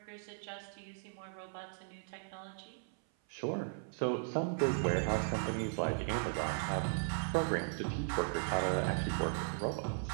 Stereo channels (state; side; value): silent; left; 53 dB below the other